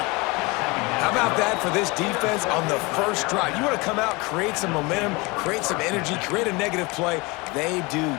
How about that for this defense on the first drive? You want to come out, create some momentum, create some energy, create a negative play. They do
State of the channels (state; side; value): quieter; right; 25.8 dB